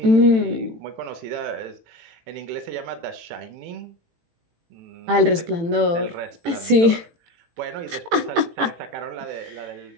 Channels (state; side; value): late; left; 18 ms